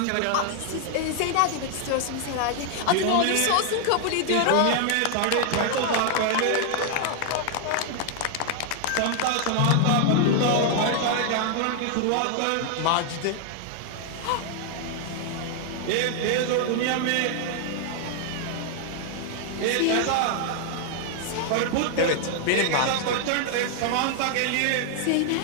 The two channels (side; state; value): both; different; correlation 0.00